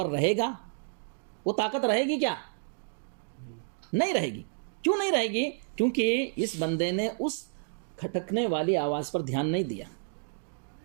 رہے گا، وہ طاقت رہے گی؟ کیا نہیں رہے گی؟ کیوں نہیں رہے گی؟ کیونکہ اس بندے نے اس کھٹکنے والی آواز پر دھیان نہیں دیا،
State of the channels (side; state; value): left; silent; digital silence